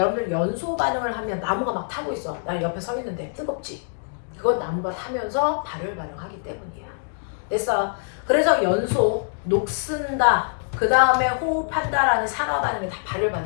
연소 반응을 하면 나무가 막 타고 있어. 나 옆에 서 있는데 뜨겁지? 그건 나무가 타면서 발열 반응하기 때문이야. 됐어? 그래서 연소, 녹슨다, 그 다음에 호흡한다라는 산화 반응이 다 발열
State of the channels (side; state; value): right; silent; digital silence